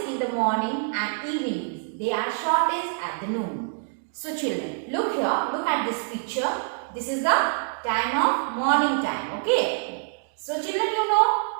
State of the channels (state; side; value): silent; left; digital silence